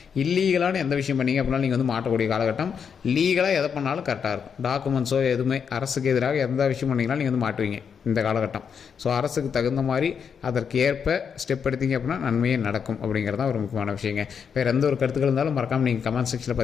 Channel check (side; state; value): right; quieter; 6.9 dB